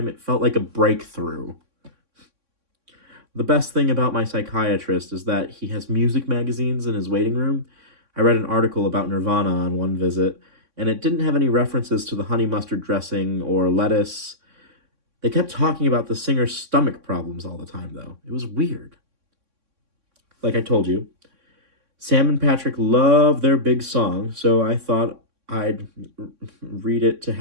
it felt like a breakthrough. The best thing about my psychiatrist is that he has music magazines in his waiting room. I read an article about Nirvana on one visit, and it didn't have any references to the honey mustard dressing or lettuce. They kept talking about the singer's stomach problems all the time, though. It was weird. Like I told you, Sam and Patrick love their big song, so I thought I'd read it to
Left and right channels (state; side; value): late; left; 3.6 ms